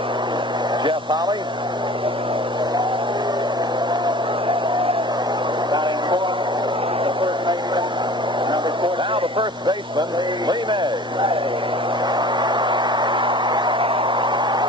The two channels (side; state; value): both; normal; correlation 0.43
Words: Jeff Holley. Now the first baseman, Lee May.